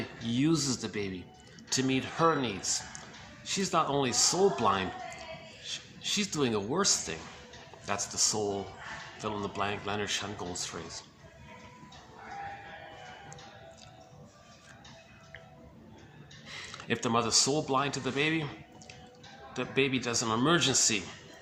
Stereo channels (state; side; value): identical; both; correlation 1.00